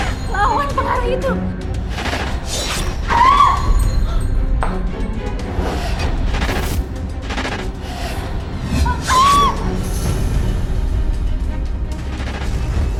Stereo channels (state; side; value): identical; both; correlation 1.00